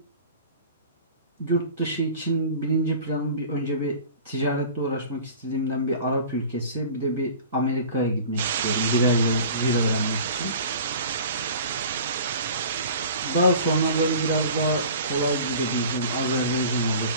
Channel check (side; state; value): both; inverted; correlation -0.42